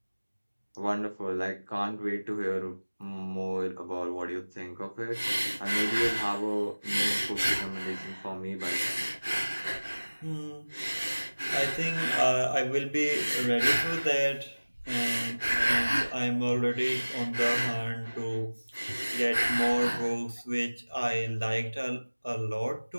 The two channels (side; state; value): both; inverted; correlation -1.00